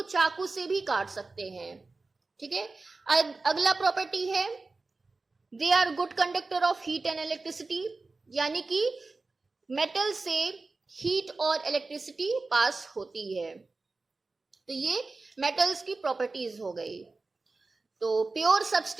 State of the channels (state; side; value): quieter; left; 3.7 dB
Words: चाकू से भी काट सकते हैं, ठीक है। अगला प्रॉपर्टी है they are good conductor of heat and electricity, यानी कि मेटल से हीट और इलेक्ट्रिसिटी पास होती है। तो ये मेटल्स की प्रॉपर्टीज हो गई। तो प्योर